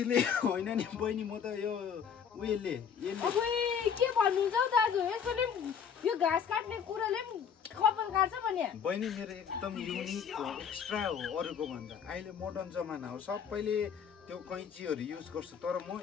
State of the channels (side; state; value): right; quieter; 7.4 dB